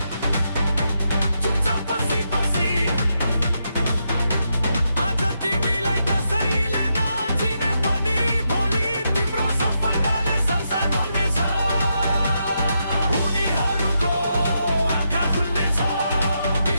चुपचाप बसी बसी। आज तिमीलाई कसैले नचिने पनि भोलि तिम्रो सफलताले संसार बोल्नेछ। उनीहरूको आँखा खुल्नेछ,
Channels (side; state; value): both; inverted; correlation -0.82